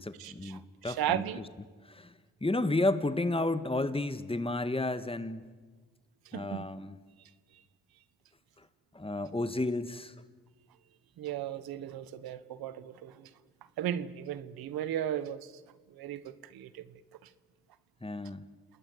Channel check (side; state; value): both; normal; correlation 0.54